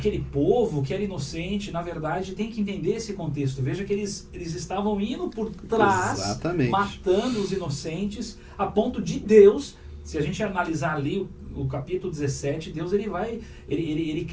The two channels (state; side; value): identical; both; correlation 1.00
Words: povo que era inocente? Na verdade, tem que entender esse contexto. Veja que eles estavam indo por trás, matando os inocentes, a ponto de Deus, se a gente analisar ali o capítulo 17, Deus ele